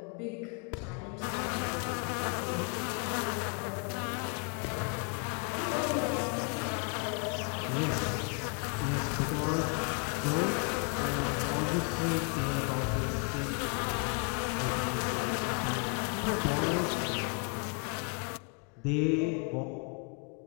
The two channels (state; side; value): quieter; right; 35.8 dB